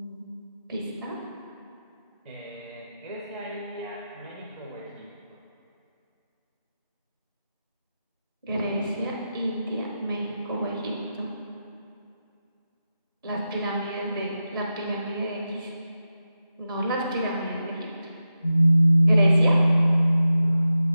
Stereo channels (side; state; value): both; inverted; correlation -0.91